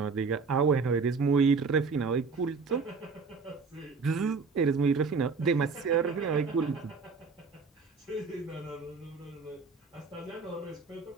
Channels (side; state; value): left; quieter; 4.7 dB